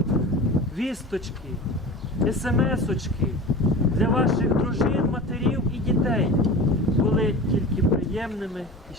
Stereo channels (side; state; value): both; normal; correlation 0.34